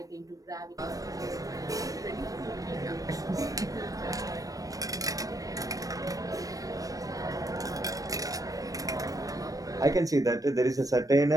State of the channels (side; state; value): left; late; 0.17 ms